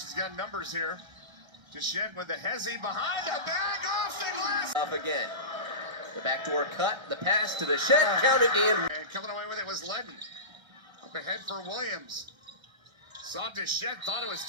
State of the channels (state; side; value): late; left; 1.3 ms